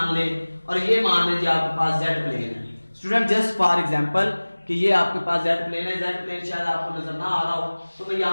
ले और ये मान लीजिए आपके पास z प्लेन है। स्टूडेंट जस्ट फॉर एग्जांपल कि ये आपके पास z प्लेन है, z प्लेन शायद आपको नजर ना आ रहा हो तो मैं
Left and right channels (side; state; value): both; inverted; correlation -1.00